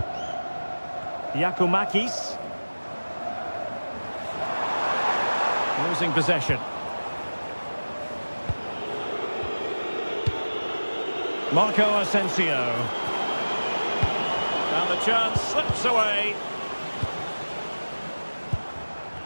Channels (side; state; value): both; inverted; correlation -1.00